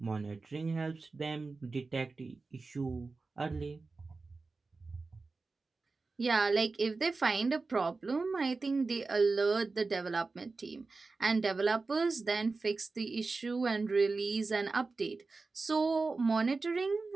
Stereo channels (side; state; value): left; quieter; 3.9 dB